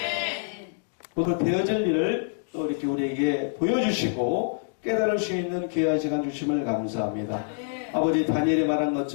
오늘 되어질 일을 또 이렇게 우리에게 보여주시고 깨달을 수 있는 귀한 시간 주심을 감사합니다. 아버지 다니엘이 말한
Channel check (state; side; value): silent; right; digital silence